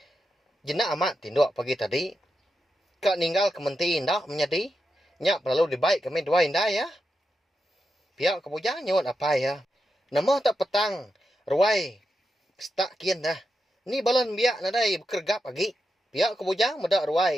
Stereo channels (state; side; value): normal; both; correlation 0.87